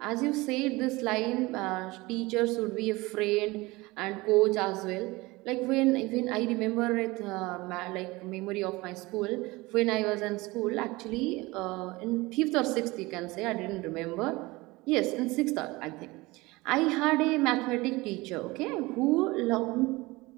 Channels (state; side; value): quieter; left; 22.0 dB